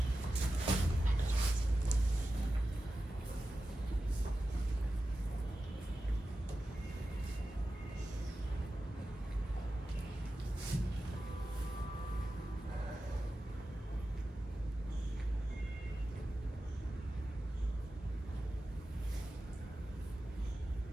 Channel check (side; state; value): both; normal; correlation 0.93